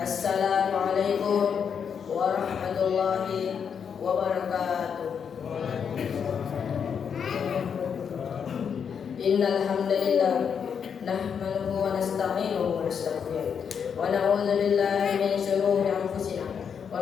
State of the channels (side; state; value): right; quieter; 7.1 dB